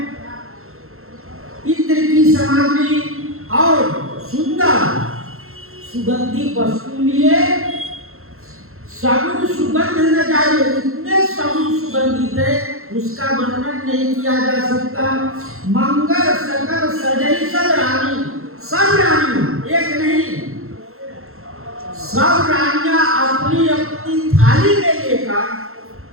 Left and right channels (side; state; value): left; late; 0.62 ms